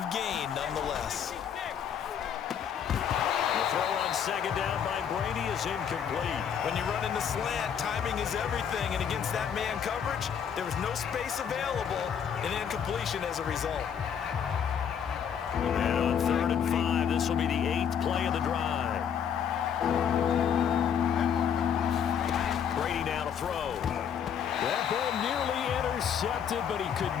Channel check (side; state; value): right; quieter; 8.1 dB